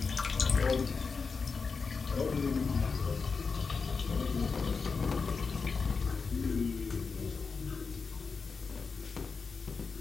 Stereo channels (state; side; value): quieter; right; 4.9 dB